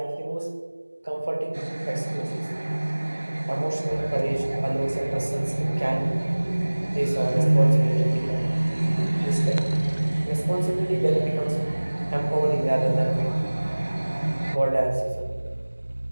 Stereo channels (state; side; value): inverted; both; correlation -1.00